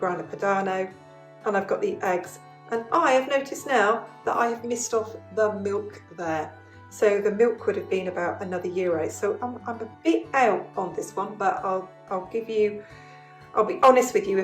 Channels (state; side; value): identical; both; correlation 1.00